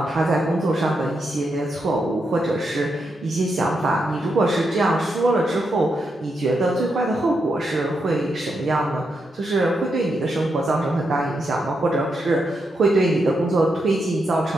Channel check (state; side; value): normal; both; correlation 0.83